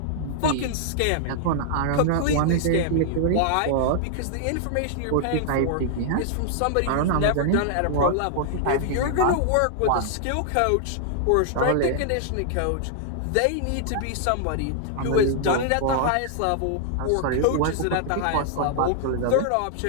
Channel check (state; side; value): different; both; correlation -0.01